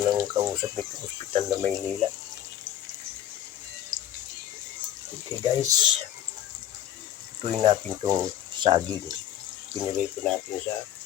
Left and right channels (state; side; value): quieter; right; 11.2 dB